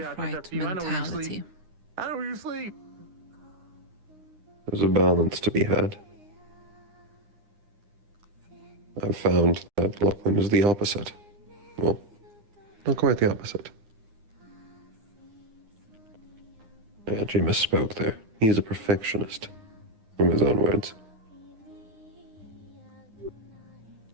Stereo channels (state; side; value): late; left; 9.8 ms